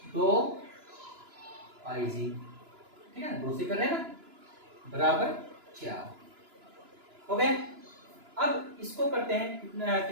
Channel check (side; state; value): left; late; 2.9 ms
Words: 2 IG, ठीक है, 2 से कर रहे हैं ना, बराबर 4 हो गए। अब इसको करते हैं